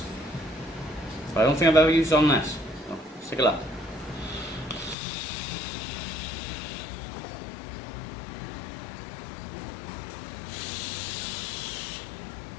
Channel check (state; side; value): drops out; right; at 5.0 s